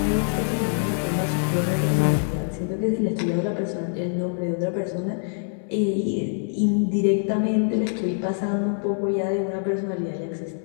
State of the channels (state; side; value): silent; right; digital silence